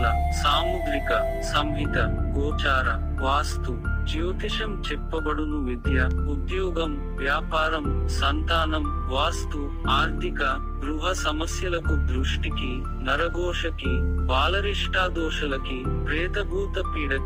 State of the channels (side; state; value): both; identical; correlation 1.00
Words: సాముద్రిక, సంహిత, గోచార, వాస్తు, జ్యోతిషం చెప్పబడును. విద్య, ఉద్యోగం, వ్యాపారం, సంతానం, వాస్తు, ఆర్థిక, గృహ సమస్యలకు, దృష్టికి, నరఘోషకి, బాలరిష్టాదోషలకి, ప్రేతభూత